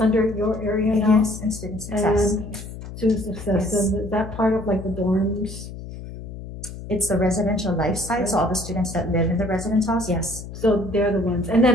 under your area now? Yes, and student success. And student success, Yes. and is that part of like the dorms? It's the residential lifestyle, so all the students that live in the residence halls, yes. So they're the ones, and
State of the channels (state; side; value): noise; left; hum, 11 dB below the sound